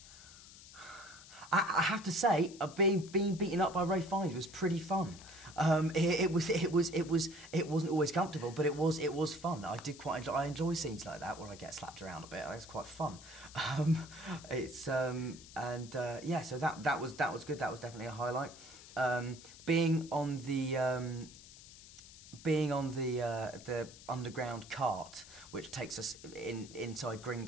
have to say, being beaten up by Ray Fiennes was pretty fun. It wasn't always comfortable, but it was fun. I did quite enjoy. I enjoy scenes like that where I get slapped around a bit. It's quite fun. Yeah. So that was good. That was definitely a highlight. Being on the underground cart, which takes us inside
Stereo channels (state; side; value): noise; left; hiss, 18 dB below the sound